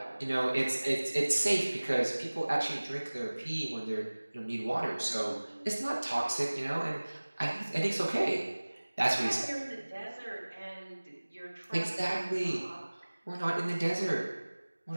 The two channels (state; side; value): inverted; both; correlation -1.00